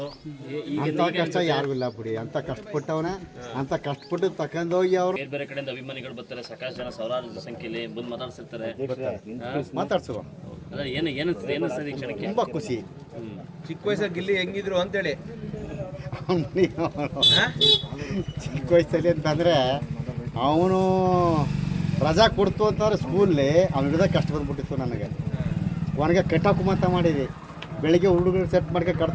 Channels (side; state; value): both; identical; correlation 1.00